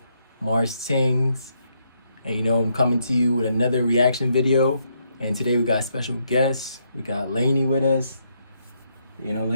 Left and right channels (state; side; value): inverted; both; correlation -0.76